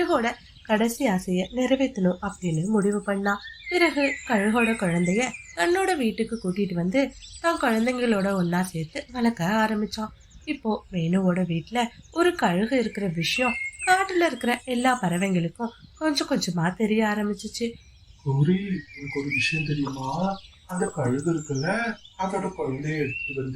கடைசி ஆசைய நிறைவேற்றணும் அப்படின்னு முடிவு பண்ணா. பிறகு கழுகோட குழந்தைய தன்னோட வீட்டுக்கு கூட்டிட்டு வந்து தான் குழந்தைங்களோட ஒன்னா சேர்த்து வளர்க்க ஆரம்பிச்சான். இப்போ மீனுவோட வீட்டுல ஒரு கழுகு இருக்கிற விஷயம் காட்டுல இருக்கிற எல்லா பறவைங்களுக்கும் கொஞ்சம் கொஞ்சமா தெரிய ஆரம்பிச்சிச்சு. கௌரி, எனக்கு ஒரு விஷயம் தெரியுமா? அந்த கழுகு இருக்குல்ல, அதோட குழந்தைய எடுத்துட்டு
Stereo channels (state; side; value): identical; both; correlation 1.00